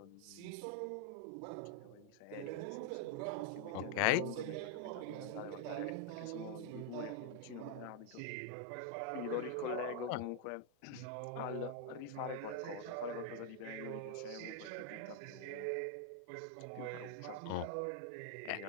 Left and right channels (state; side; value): different; both; correlation 0.00